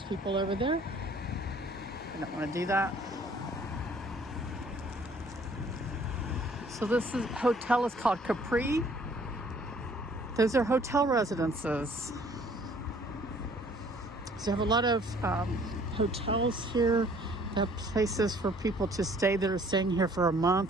people over there. I don't want to do that. So this hotel is called Capri. Those are hotel residences. So you have a lot of hotels here. They have places for people to stay that are staying here for a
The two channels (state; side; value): normal; both; correlation 0.57